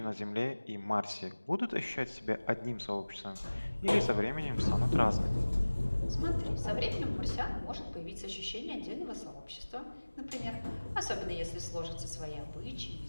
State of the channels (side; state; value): both; inverted; correlation -1.00